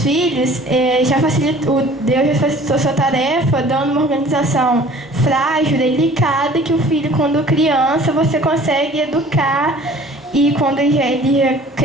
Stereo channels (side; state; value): both; normal; correlation 0.49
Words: filhos, Deus já facilitou sua tarefa, dando uma organização frágil, delicada, que o filho, quando criança, você consegue educar, e quando